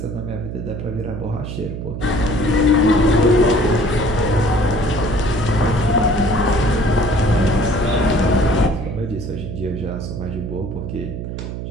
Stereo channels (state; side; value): noise; right; hum, 7 dB below the sound